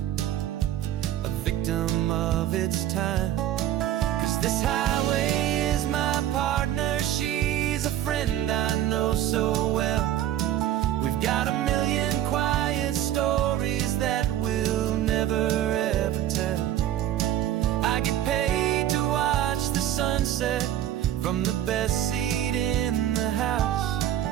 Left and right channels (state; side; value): quieter; left; 12.0 dB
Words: a victim of its time. 'Cause this highway is my partner, she's a friend I know so well. We've got a million quiet stories that we'll never ever tell. I get paid to watch the sunset from the best seat in the house,